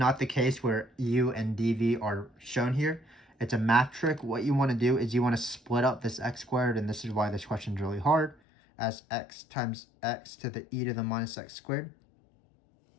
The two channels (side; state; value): right; drops out; at 8.3 s